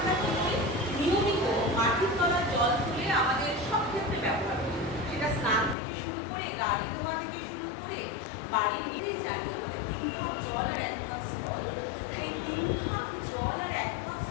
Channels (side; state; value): right; drops out; at 5.8 s